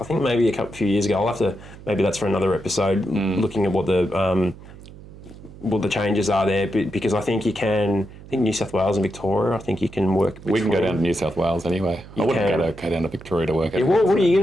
I think maybe a few years ago. I'll have to. Maybe that's for another episode. Looking at what the changes are there, because I think you can. I think New South Wales and Victoria, I think you can work. We can go down to New South Wales anyway. I wouldn't go down to Victoria to work. Yeah, what are you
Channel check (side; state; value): right; noise; hum, 18 dB below the sound